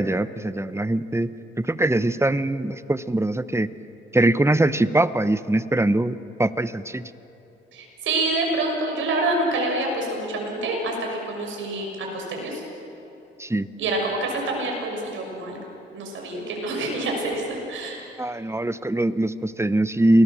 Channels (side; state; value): both; normal; correlation 0.69